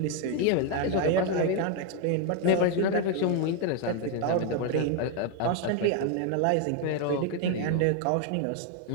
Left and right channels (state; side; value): different; both; correlation 0.01